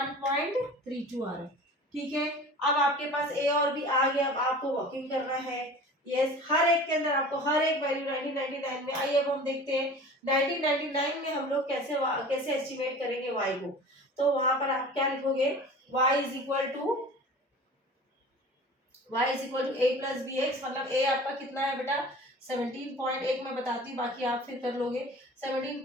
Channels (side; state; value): both; normal; correlation 0.40